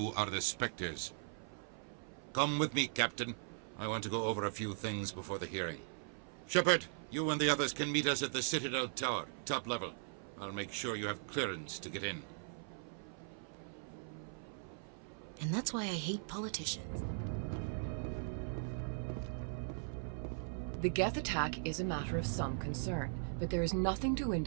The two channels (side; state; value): left; silent; 51 dB below the other